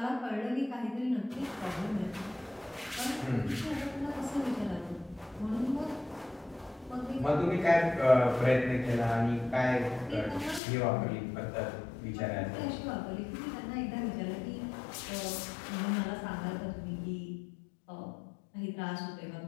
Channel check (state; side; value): drops out; right; at 10.6 s